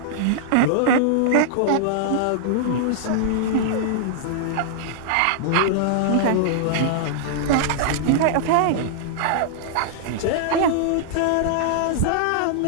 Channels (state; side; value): different; both; correlation -0.01